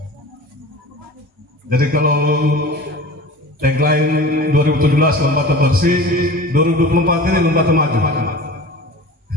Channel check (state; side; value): normal; both; correlation 0.37